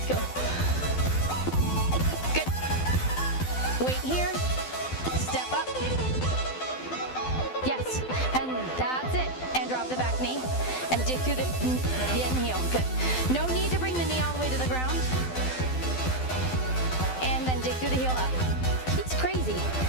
go. Good. Weight here. Step up. Yes, and that's it. And drop the back knee and dig through the end heel. Good. No need to bring the knee all the way to the ground. And then dig through the heel up. He's crazy.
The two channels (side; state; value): right; late; 12 ms